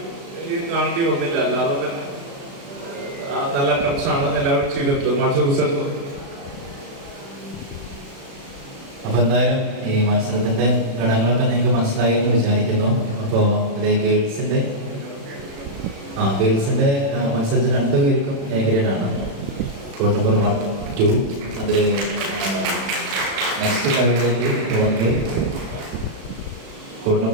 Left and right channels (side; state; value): left; late; 36 ms